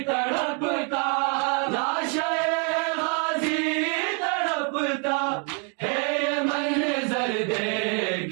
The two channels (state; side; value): quieter; left; 38.8 dB